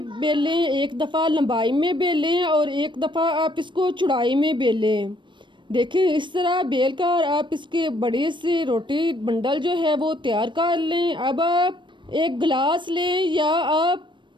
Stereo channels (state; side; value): late; left; 0.23 ms